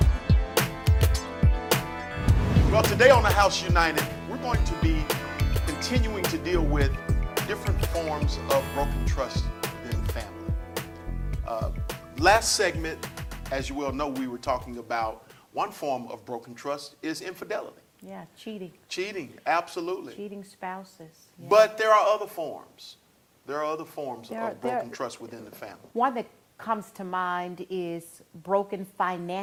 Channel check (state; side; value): identical; both; correlation 1.00